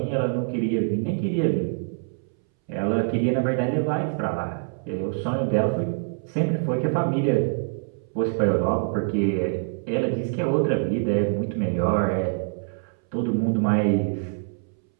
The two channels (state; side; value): silent; left; 62 dB below the other